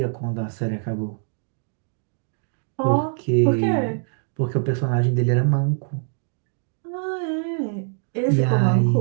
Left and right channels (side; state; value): left; silent; digital silence